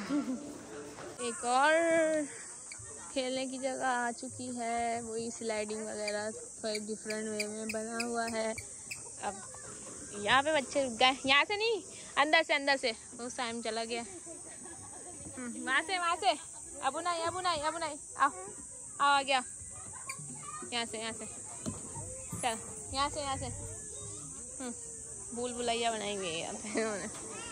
एक और खेलने की जगह आ चुकी है, वही स्लाइडिंग वगैरह थोड़ा डिफरेंट वे में बना हुआ है। अब यहाँ पे बच्चे रुक गए, यहाँ से नहीं, अंदर से वो टाइम चला गया। वहाँ से अबू नहीं आओ आ गया। यहाँ से चल, यहाँ से भूल भुलैया बनाई हुई है यहाँ पे इन्होंने।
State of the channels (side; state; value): both; identical; correlation 1.00